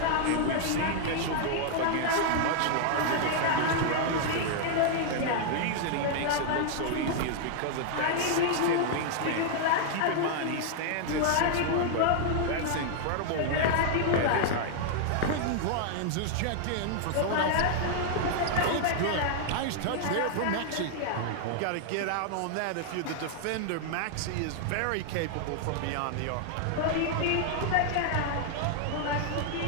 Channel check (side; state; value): both; different; correlation -0.01